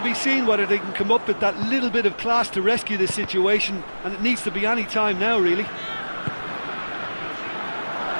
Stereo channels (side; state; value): both; inverted; correlation -1.00